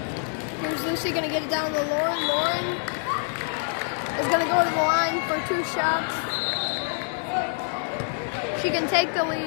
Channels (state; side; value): silent; right; 61 dB below the other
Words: Here's Lucy gonna get it down to Lauren. Lauren is gonna go to the line for 2 shots. She can take the